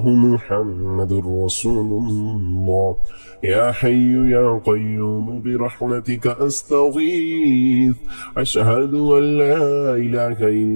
محمد رسول الله. يا حي يا قيوم برحمتك أستغيث. أشهد أن لا إله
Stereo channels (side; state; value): both; inverted; correlation -1.00